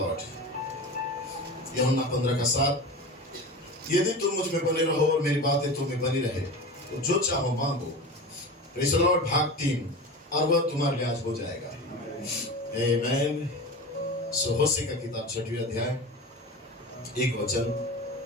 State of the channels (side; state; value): both; normal; correlation 0.30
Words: यूहन्ना 15 का 7, यदि तुम मुझ में बने रहो और मेरी बातें तुम में बनी रहे तो जो चाहो मांगो। Praise the Lord. भाग 3, और वह तुम्हारे लिए आज हो जाएगा। आमीन। सो होशे का किताब 6वें अध्याय 1 वचन